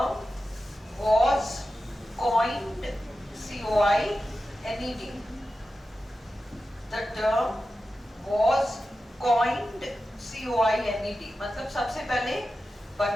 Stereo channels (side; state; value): both; normal; correlation 0.92